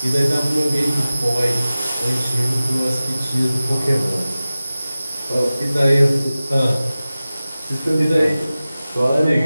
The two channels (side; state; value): both; inverted; correlation -0.96